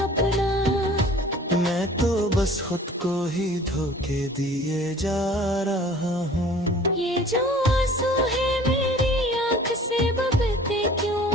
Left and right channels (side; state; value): both; normal; correlation 0.48